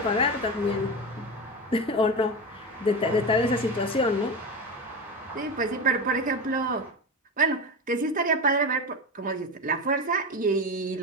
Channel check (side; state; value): both; normal; correlation 0.21